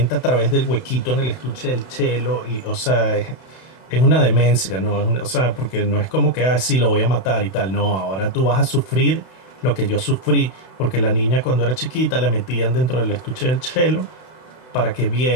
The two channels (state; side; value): late; right; 32 ms